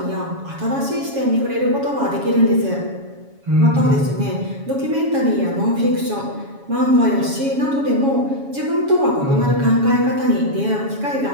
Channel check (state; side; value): late; left; 7.2 ms